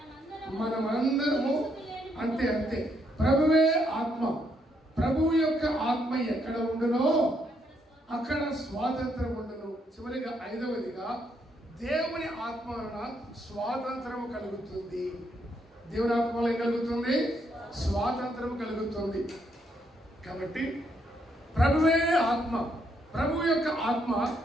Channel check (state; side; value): normal; both; correlation 0.75